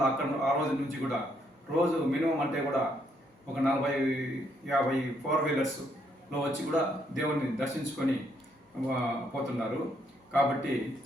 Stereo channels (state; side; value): normal; both; correlation 0.73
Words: అక్కడ ఆ రోజు నుంచి కూడా రోజు మినిమం అంటే కూడా ఒక 40-50 4 వీలర్స్లో వచ్చి కూడా దేవుణ్ణి దర్శించుకొని పోతున్నారు. కాబట్టి